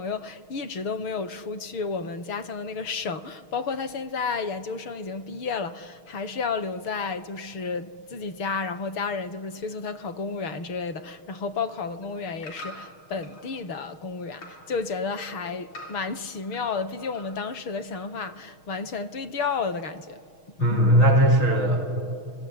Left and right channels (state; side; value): late; right; 6.4 ms